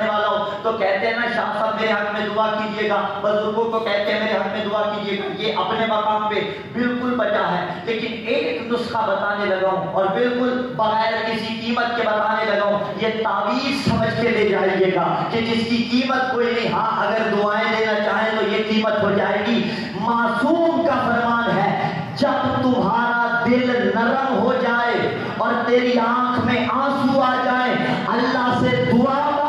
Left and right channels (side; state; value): both; identical; correlation 1.00